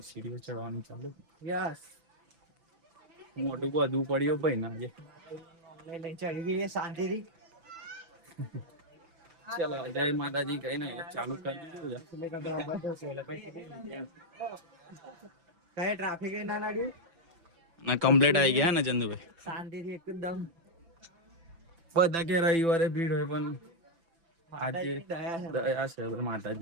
સીડીઓ ચડવાની ચાલુ. યસ. મોટું બધું પડ્યું ભાઈ ના આજે. લઈ ચડી ગઈ શાંતિથી. ચલો, જય માતાજી કહીને ચાલુ કરી દીધું. કઈ ટ્રાફિક ના લાગ્યું ના, કમ્પ્લીટ આવી ગયા ને ચંદુભાઈ. શાંતિથી એકદમ. બધા કે રવિવારે ભીડ હોય, પણ આજે દયા દયા છે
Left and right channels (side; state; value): left; late; 6.0 ms